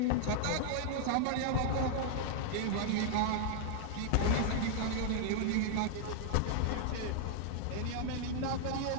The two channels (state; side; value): different; both; correlation -0.01